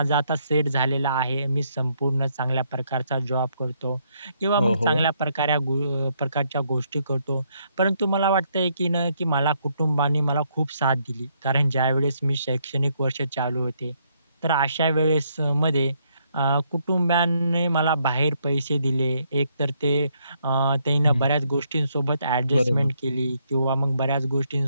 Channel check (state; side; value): inverted; both; correlation -0.73